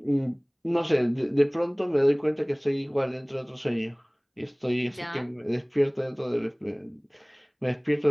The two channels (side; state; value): both; identical; correlation 1.00